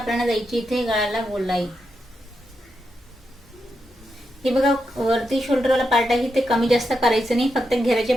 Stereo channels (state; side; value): normal; both; correlation 0.85